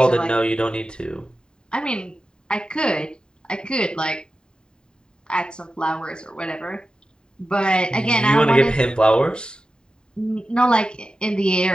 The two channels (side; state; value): right; late; 0.048 ms